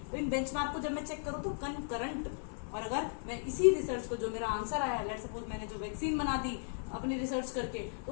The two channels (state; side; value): silent; right; 54 dB below the other